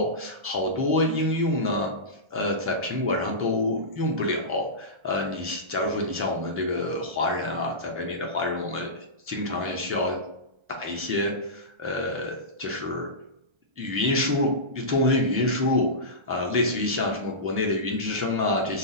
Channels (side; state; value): left; late; 1.3 ms